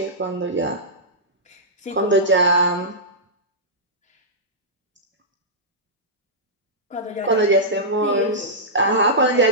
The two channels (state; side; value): normal; both; correlation -0.13